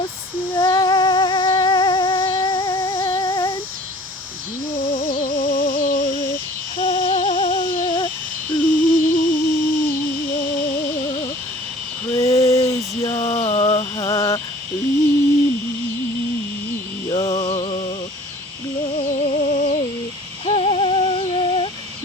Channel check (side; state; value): both; normal; correlation 0.48